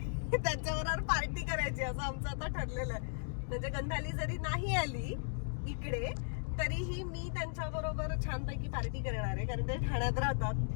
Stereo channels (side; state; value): right; silent; digital silence